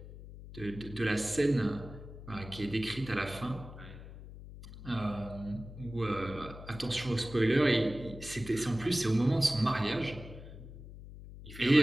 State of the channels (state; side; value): noise; left; hum, 14 dB below the sound